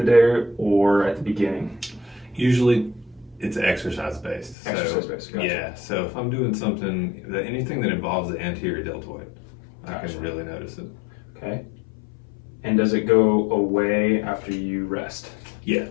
day or at the beginning? Usually it's exercise based. Exercise based, gotcha. Yeah, so if I'm doing something, anything that involves the anterior deltoid, I can really notice it. Okay. And does it go away after you rest? Yeah.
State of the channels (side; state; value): right; drops out; at 4.5 s